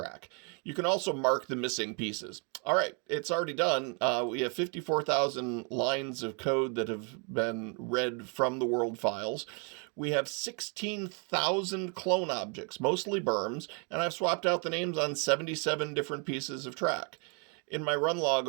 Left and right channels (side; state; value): left; quieter; 36.1 dB